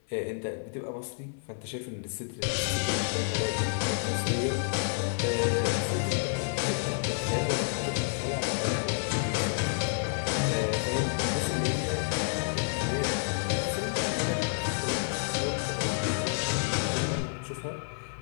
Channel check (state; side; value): silent; right; 58 dB below the other